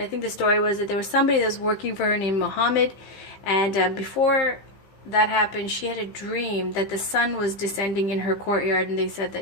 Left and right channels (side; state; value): right; late; 15 ms